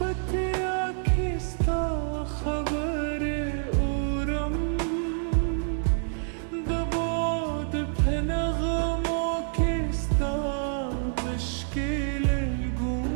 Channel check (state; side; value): silent; left; digital silence